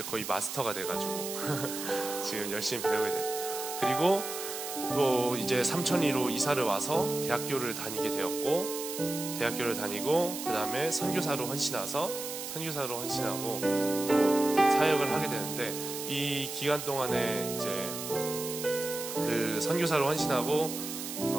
거의 마스터가 돼가지고 지금 열심히 배우게 됐죠. 그리고 또 이제 삼천리로 이사를 와서 대학교를 다니게 되었고 대학교를 다니고 그 다음에 선교사로 헌신하고 또 사역을 하게 되는데 이 기간 동안에 이제 그 선교사로 헌신하고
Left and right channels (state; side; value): noise; right; hiss, 7 dB below the sound